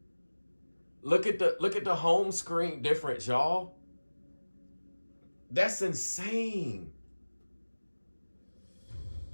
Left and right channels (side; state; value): both; inverted; correlation -1.00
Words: Look at the home screen difference, y'all. That's insane.